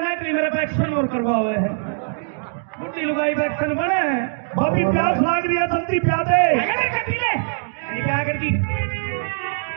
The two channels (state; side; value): silent; left; digital silence